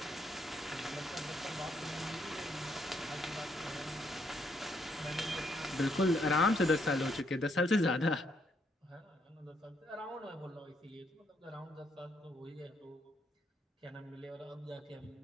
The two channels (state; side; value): normal; both; correlation 0.74